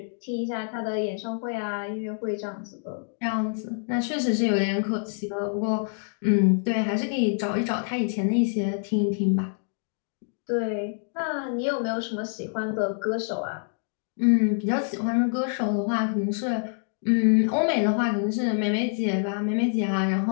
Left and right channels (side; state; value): right; silent; 61 dB below the other